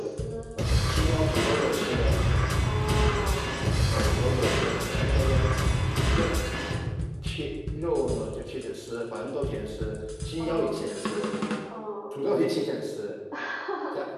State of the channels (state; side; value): identical; both; correlation 1.00